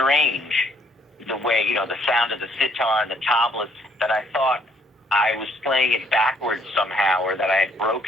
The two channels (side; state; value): both; normal; correlation 0.66